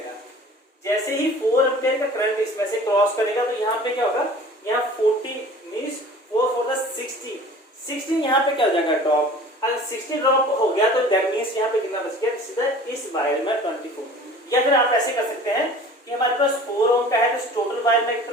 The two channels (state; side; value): normal; both; correlation 0.45